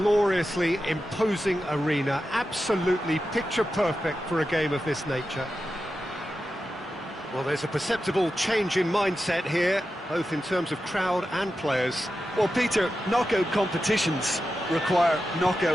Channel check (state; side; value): normal; both; correlation 0.91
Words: imposing arena, absolutely picture-perfect for a game of this nature. Well, there's a perceptible change in mindset here, both in terms of crowd and players. Well, Peter, knockout competitions require